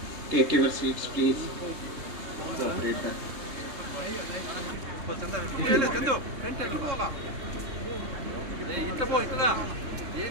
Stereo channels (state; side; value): late; left; 3.2 ms